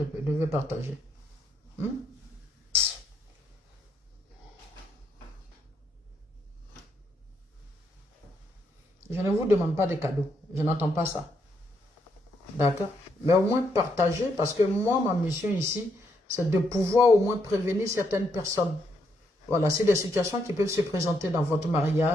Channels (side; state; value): both; normal; correlation 0.76